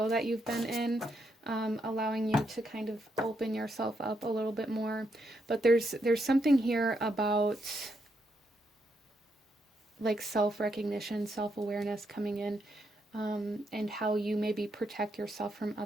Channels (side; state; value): both; normal; correlation 0.79